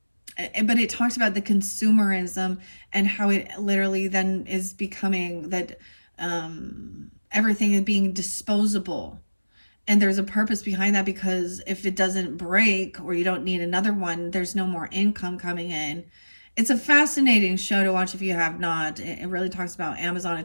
it talks about the consumerism and how it literally then is becoming that everything is being disposable. And there's a purpose behind that, because if it doesn't break or you don't need another one, there's no more income coming in. It's a fascinating show to watch if you have not. It really talks about Amazon. It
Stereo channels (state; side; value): inverted; both; correlation -1.00